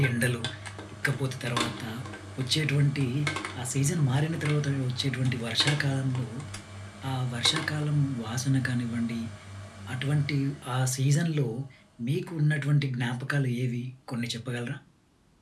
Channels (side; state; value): both; identical; correlation 1.00